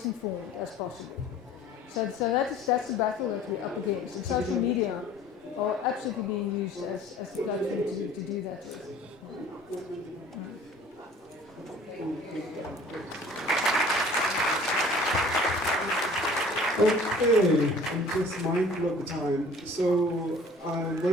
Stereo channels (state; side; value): normal; both; correlation 0.49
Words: as possible. So that's the battle that we're up against. And social media are absolutely being used as the platform to do that with. Okay, I'm just mindful of the time. So what I'm